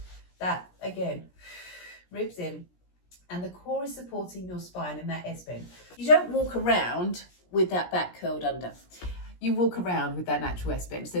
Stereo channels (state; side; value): late; right; 17 ms